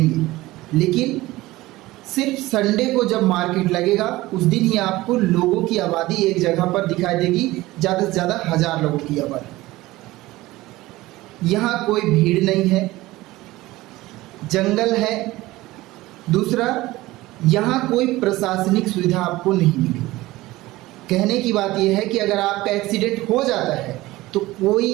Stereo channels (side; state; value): left; quieter; 18.4 dB